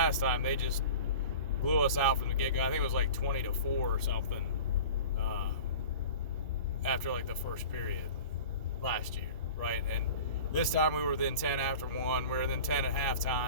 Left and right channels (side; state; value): both; inverted; correlation -0.39